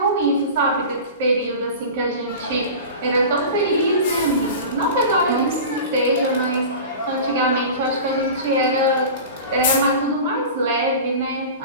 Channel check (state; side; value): inverted; both; correlation -0.34